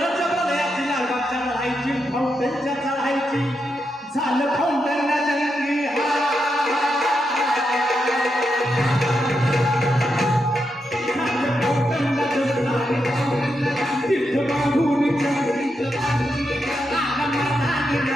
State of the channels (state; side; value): normal; both; correlation 0.84